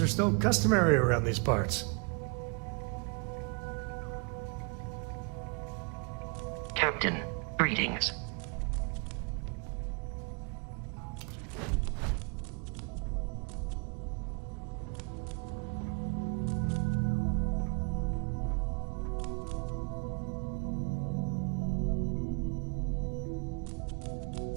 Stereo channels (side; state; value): left; quieter; 34.5 dB